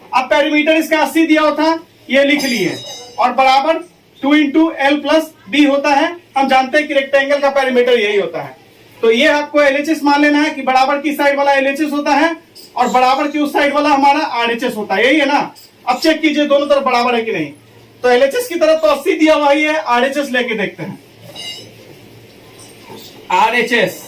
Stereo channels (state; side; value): identical; both; correlation 1.00